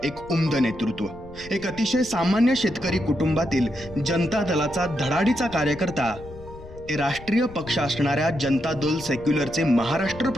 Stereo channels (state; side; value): noise; left; rumble, 17 dB below the sound